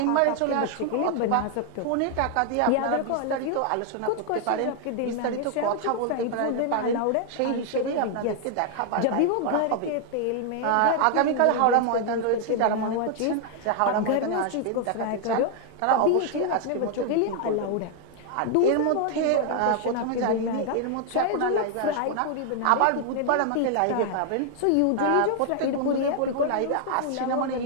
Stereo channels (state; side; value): different; both; correlation 0.00